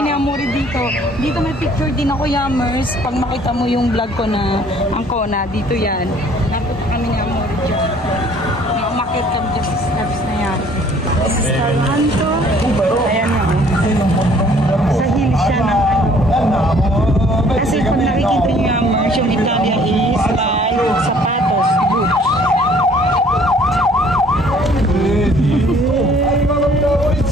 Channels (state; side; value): normal; both; correlation 0.57